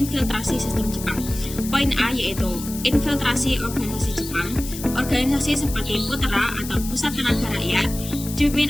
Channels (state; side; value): noise; left; hiss, 11 dB below the sound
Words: sistem Jepang. Poin A yaitu infiltrasi organisasi Jepang. Organisasi seperti Putra atau Pusat Tenaga Rakyat dipimpin